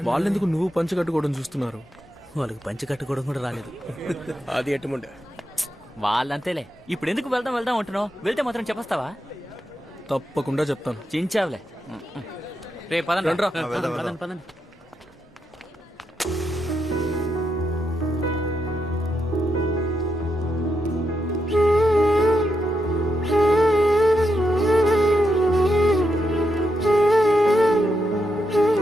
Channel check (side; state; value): both; normal; correlation 0.84